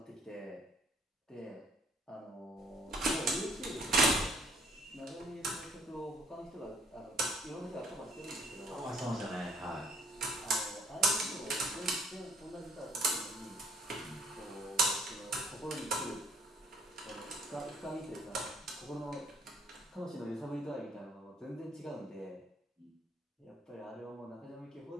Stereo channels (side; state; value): both; normal; correlation 0.61